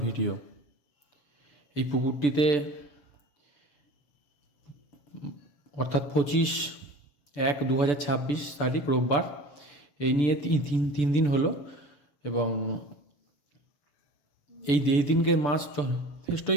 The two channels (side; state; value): right; late; 6.9 ms